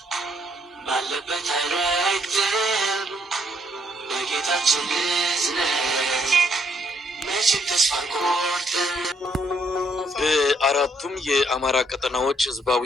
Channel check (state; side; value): normal; both; correlation 0.71